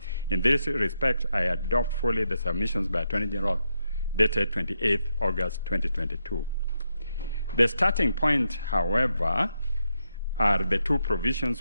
In this respect, I adopt fully the submissions by Attorney General dated 28th August 2022. The starting point, however, are the two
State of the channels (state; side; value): inverted; both; correlation -0.83